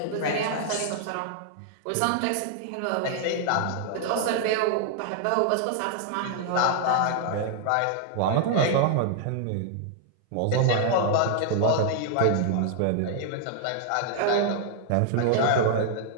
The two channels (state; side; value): different; both; correlation 0.00